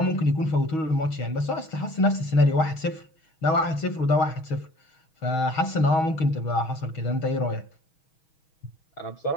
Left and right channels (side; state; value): right; late; 6.3 ms